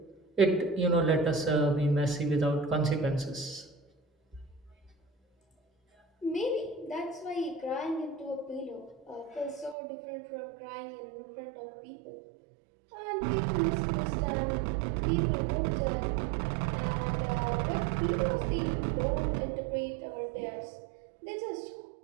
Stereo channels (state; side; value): drops out; left; at 9.8 s